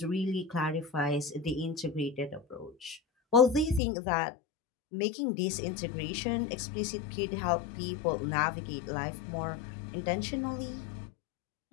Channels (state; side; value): drops out; right; at 3.8 s